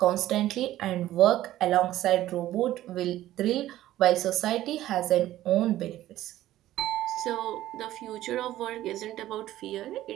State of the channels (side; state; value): left; quieter; 14.2 dB